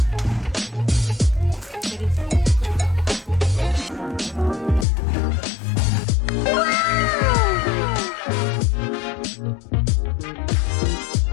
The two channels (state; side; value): drops out; right; at 4.9 s